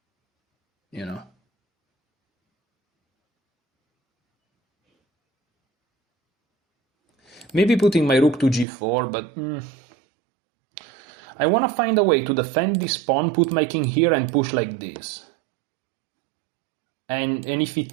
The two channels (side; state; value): left; drops out; at 8.7 s